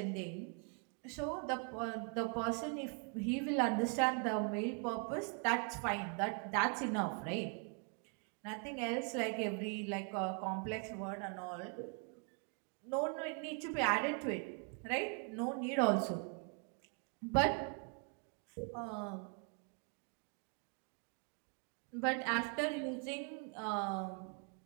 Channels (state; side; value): quieter; left; 39.6 dB